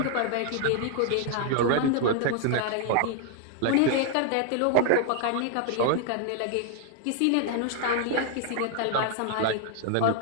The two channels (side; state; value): both; different; correlation 0.00